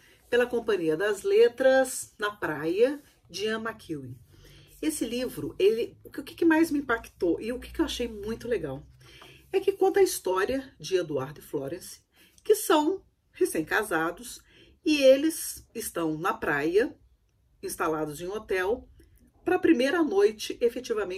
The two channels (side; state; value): both; identical; correlation 1.00